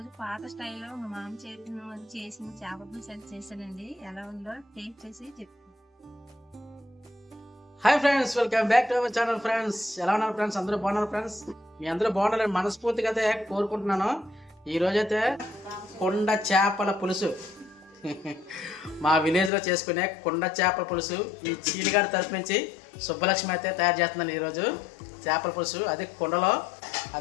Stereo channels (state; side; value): drops out; right; at 19.5 s